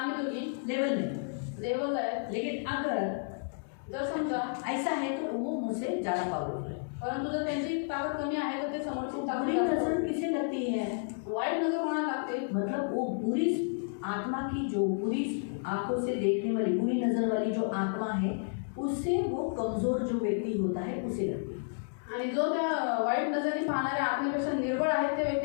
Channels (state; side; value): silent; right; digital silence